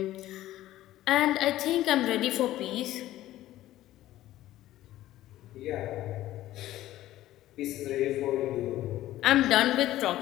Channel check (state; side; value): quieter; right; 14.6 dB